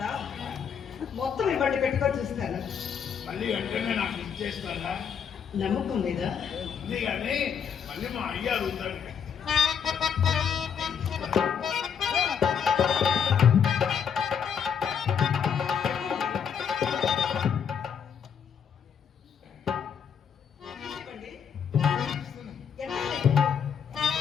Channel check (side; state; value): right; quieter; 7.4 dB